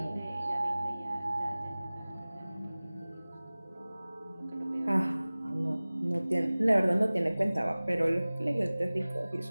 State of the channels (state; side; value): inverted; both; correlation -0.99